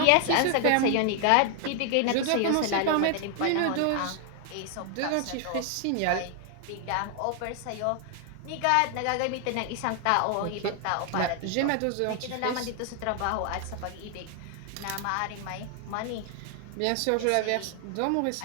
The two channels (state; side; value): different; both; correlation 0.00